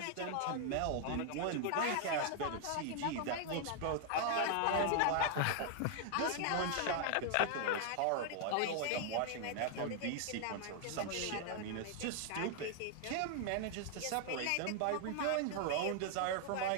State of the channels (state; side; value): different; both; correlation 0.00